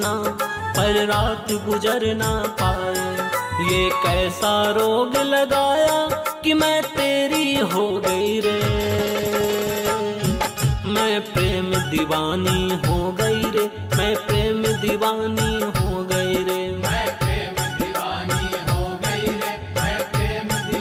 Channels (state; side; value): identical; both; correlation 1.00